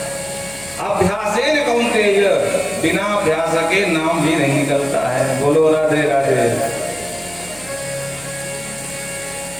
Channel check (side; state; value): left; noise; hum, 22 dB below the sound